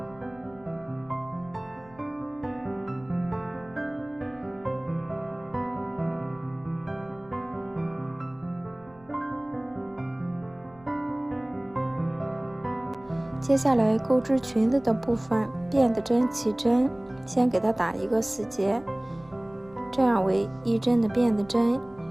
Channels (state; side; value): noise; left; rumble, 26 dB below the sound